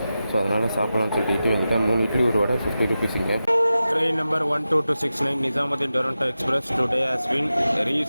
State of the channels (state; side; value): inverted; both; correlation -0.93